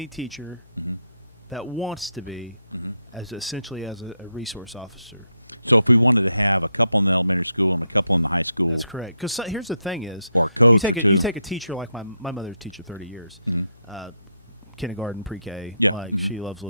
teacher Mm-hmm. that wants to be Mm-hmm. as essentially as a resource officer. So if we wanted to have a couple in the elementary school and a couple in the high school, That's correct. Because here's the thing: is Or a coach you take or a, two. you take a teacher like my mother's teacher 30 years, Mhm. kindergarten, pre-K. Yeah, like mhm, she loves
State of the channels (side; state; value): both; inverted; correlation -0.80